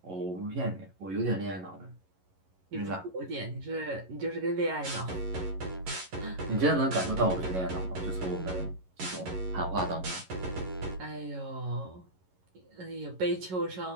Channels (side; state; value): left; late; 11 ms